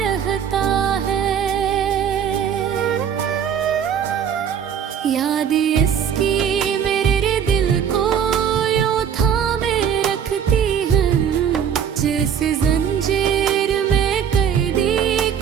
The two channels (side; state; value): left; quieter; 8.2 dB